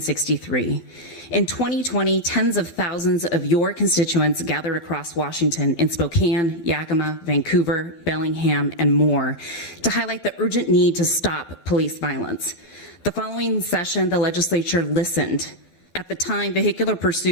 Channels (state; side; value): late; right; 12 ms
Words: In 2020, tens of thousands of your constituents gathered across Washington in Spokane, Yakima, Vancouver, Bellingham, and more to highlight the urgent need to stop police violence. The following session, the legislature listened. At the time, vehicular